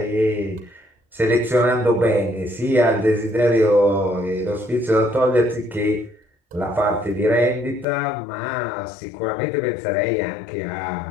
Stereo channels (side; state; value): right; drops out; at 7.9 s